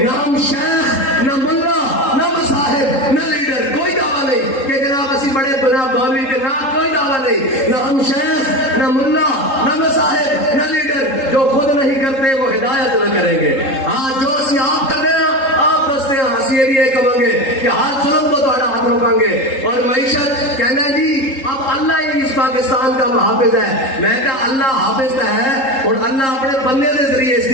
نہ ہم شیخ, نہ ملا, نہ مصاحب, نہ لیڈر, کوئی دعویٰ نہیں کہ جناب اسی بڑے جناب مولوی کے نام, کوئی دعویٰ نہیں. نہ ہم شیخ, نہ ملا, نہ مصاحب, نہ لیڈر. جو خود نہیں کرتے وہ ہدایت نہ کریں گے. ہاں جو اسی آپ کر رہے ہیں آپ دستے ہیں, اسی یہ بھی یہ کہیں گے کہ ہر ظلم کو تھوڑا ہاتھ روکیں گے. اور معیشت کہنا جی اب اللہ ہی اس پاکستان کا محافظ ہے. میں کہا اللہ حافظ ہے اور اللہ اپنے بندے کے ذریعے اس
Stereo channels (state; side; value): late; right; 3.8 ms